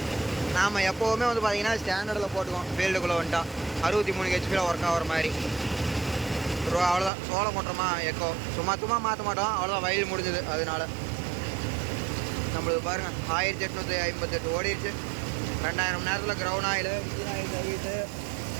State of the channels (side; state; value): left; drops out; at 7.1 s